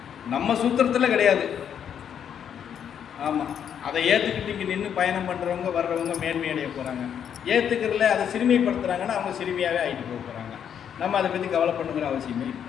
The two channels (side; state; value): right; quieter; 8.6 dB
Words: நம்ம சூத்திரத்தில் கிடையாது. ஆமாம், அதை ஏற்றுக்கிட்டு இங்கே நின்று பயணம் பண்ணுறவங்க வர்றவங்க மேன்மை அடைய போகிறாங்க. ஏற்றுக்கிறதுல அதை சிறுமைப்படுத்துகிறாங்கன்னா அவங்க சிறுமியாகவே ஆகிட்டு போக போகிறாங்க. நம்ம அதை பற்றி கவலை பண்ணுங்கிற அவசியமே இல்லை.